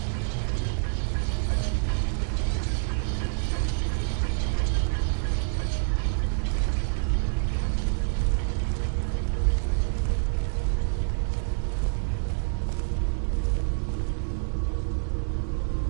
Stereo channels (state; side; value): silent; left; digital silence